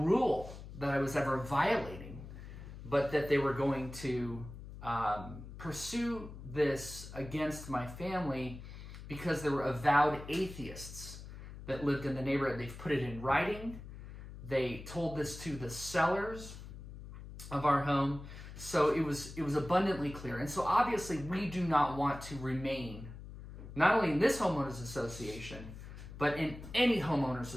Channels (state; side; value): noise; left; hum, 13 dB below the sound